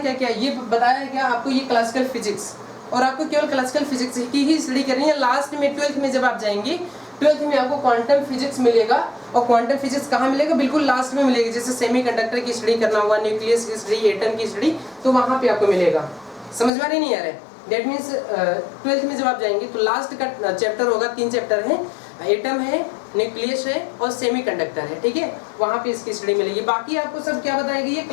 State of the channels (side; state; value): right; drops out; at 16.7 s